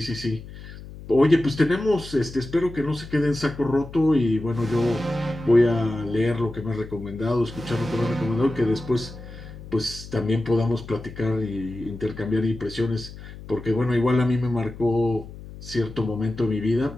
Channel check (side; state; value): left; noise; hum, 14 dB below the sound